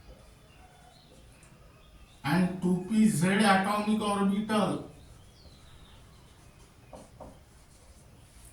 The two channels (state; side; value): identical; both; correlation 1.00